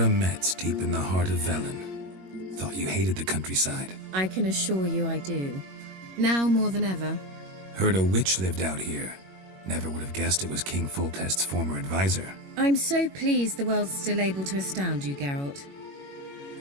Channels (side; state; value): left; late; 21 ms